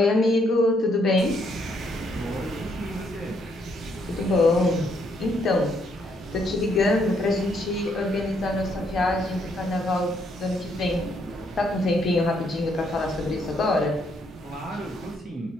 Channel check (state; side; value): normal; both; correlation 0.72